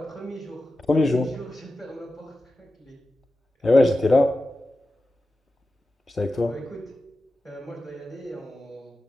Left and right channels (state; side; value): normal; both; correlation 0.93